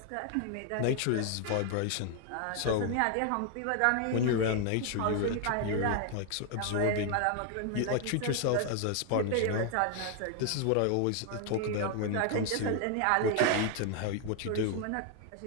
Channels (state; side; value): different; both; correlation 0.00